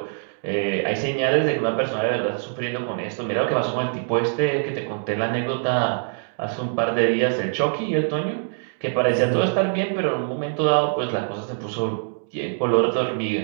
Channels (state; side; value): silent; left; 63 dB below the other